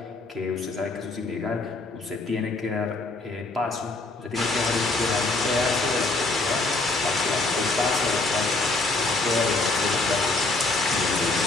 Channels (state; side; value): quieter; right; 3.3 dB